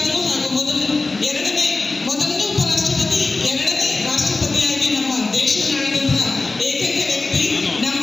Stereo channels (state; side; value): quieter; right; 3.5 dB